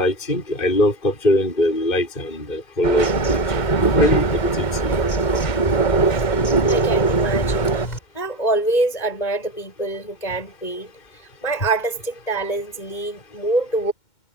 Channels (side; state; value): right; late; 2.1 ms